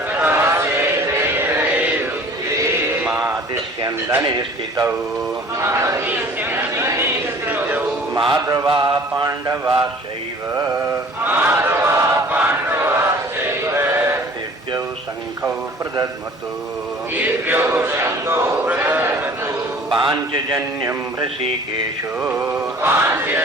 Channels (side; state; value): both; normal; correlation 0.48